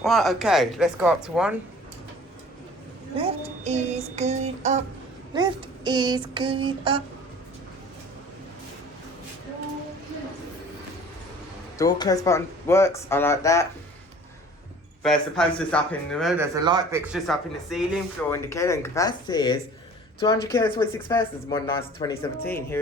Right, okay, let's go up to 1. Lift is going up. Lift is going up. Door close button works, I like that. There's the posters up in the room, there's a light fixtures up in the ceiling, floor indicator, and capacity is 200 kilos, 26 persons, modernised 2017. Here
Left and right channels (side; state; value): both; normal; correlation 0.47